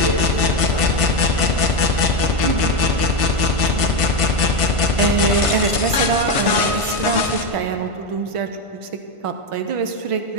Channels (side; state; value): left; late; 1.5 ms